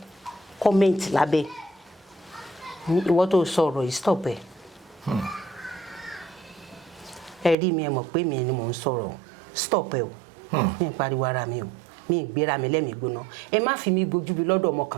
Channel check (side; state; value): left; drops out; at 7.6 s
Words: kọ́mẹ́ǹtì lábẹ́ ìwọ tó sọ̀rọ̀ yìí stop ẹ̀ ẹ rí mi ẹ mọ̀ pé mi ni mò ń sọ̀rọ̀ stop ẹ̀ o mi ń pariwo ara mi o mi ń gbéra mi lẹ́mìí gbóná ẹ má fi mi gbójú bi lọ́dọ̀ ọmọ